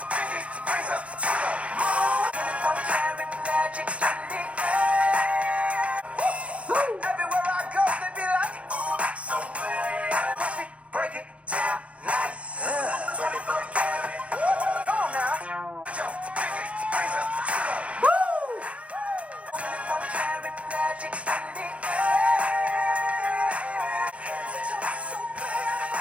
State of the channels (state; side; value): late; left; 0.063 ms